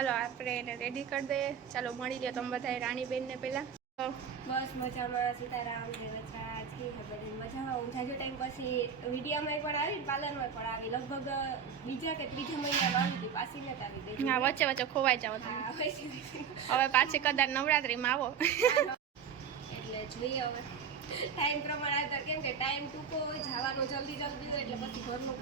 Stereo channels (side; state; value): left; quieter; 7.1 dB